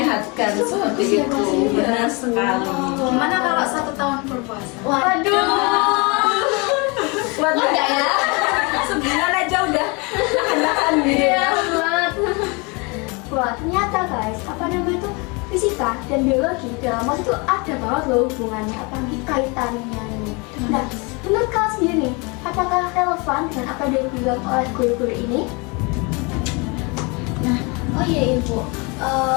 seperti itu. Benar sekali. Gimana kalau 1 tahun berpuasa? Waduh. Kuat nggak ya? Sebulan aja udah nahan-nahan gitu ya. Wah, ternyata guys, apa namanya itu fisika dan biologi dalam masa itu ada banget loh hubungannya, apalagi kaitannya nih. Nah, menurut kalian sendiri nih, apakah relevan dengan apa yang dibilang oleh guru-guru ini? Nah, oh iya Ibu,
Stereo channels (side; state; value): right; quieter; 29.3 dB